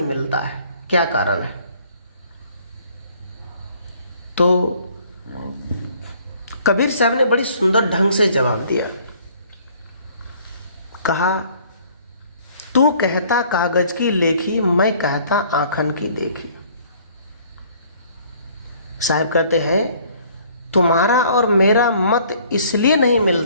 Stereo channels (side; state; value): both; inverted; correlation -0.57